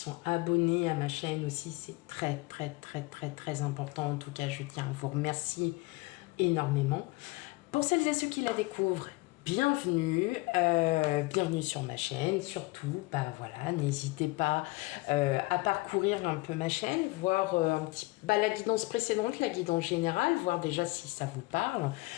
abonnés à ma chaîne aussi. C'est très important. En tout cas, je tiens à vous remercier énormément. Pour celles et ceux qui la découvrent, bienvenue, bienvenue sur ma chaîne. Surtout, bah voilà, n'hésitez pas à parcourir un peu ma chaîne, voir la guidance précédente, la guidance générale, voir déjà si ça vous parle,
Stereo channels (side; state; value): right; quieter; 22.8 dB